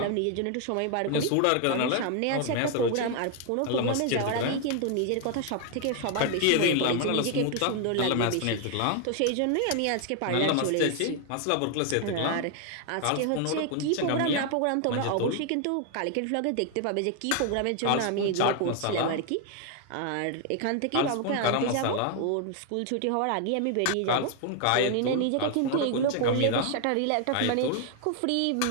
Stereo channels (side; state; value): both; different; correlation 0.00